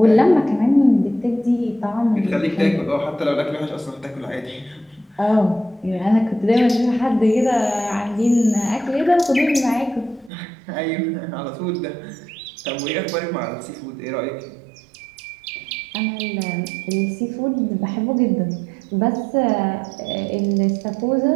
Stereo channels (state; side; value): drops out; left; at 10.3 s